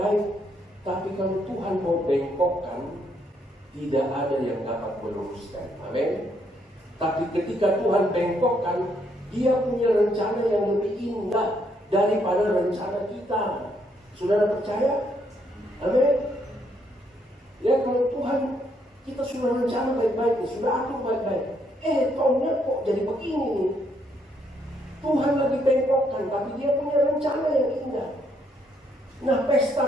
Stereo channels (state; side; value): normal; both; correlation 0.73